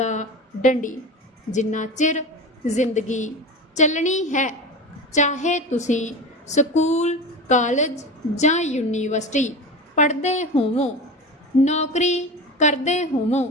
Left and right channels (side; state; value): both; normal; correlation 0.28